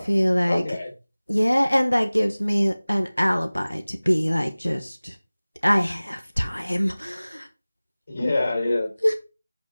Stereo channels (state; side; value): inverted; both; correlation -0.99